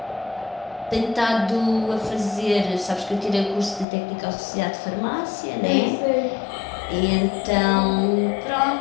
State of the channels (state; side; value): drops out; right; at 3.9 s